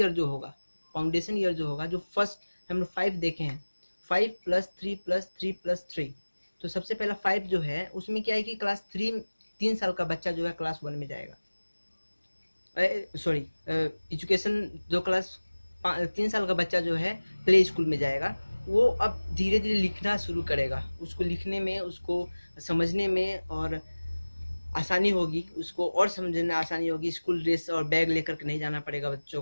जो होगा, जो फर्स्ट हम लोग 5 देखे हैं, 5+3+3+3। तो सबसे पहला 5 जो है उसमें क्या है कि क्लास 3, 3 साल का बच्चा जो है क्लास 1 में जाएगा। सॉरी, एजुकेशन जो क्लास 3 साल का बच्चा जो है प्ले स्कूल में जाएगा, वो अब धीरे धीरे लिखना शुरू करेगा। उसको लिखने में, उसको समझने में और आसानी होगी, उसको और समझने में आसानी होगी। स्कूल ड्रेस और बैग लेकर के नहीं जाना पड़ेगा बच्चों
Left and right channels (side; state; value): both; inverted; correlation -1.00